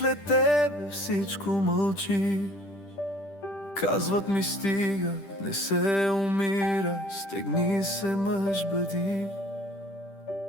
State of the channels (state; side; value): late; right; 10 ms